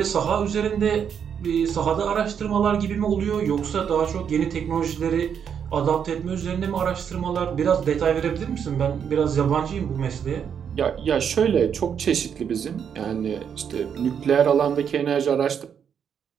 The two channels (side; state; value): left; quieter; 7.7 dB